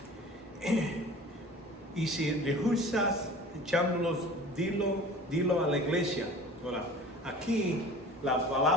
Y si rehusas echándolos, dilo a la iglesia. Ahora, aquí la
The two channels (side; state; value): both; normal; correlation 0.42